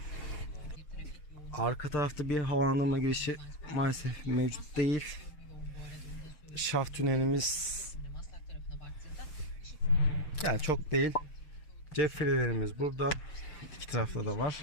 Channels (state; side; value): late; right; 6.7 ms